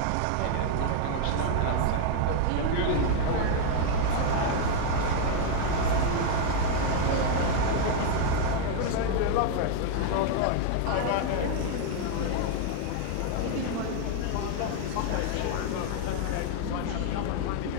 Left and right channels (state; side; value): different; both; correlation 0.00